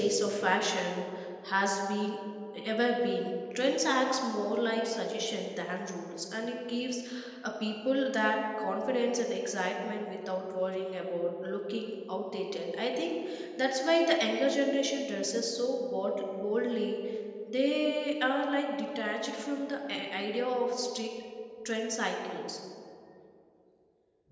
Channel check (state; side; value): identical; both; correlation 1.00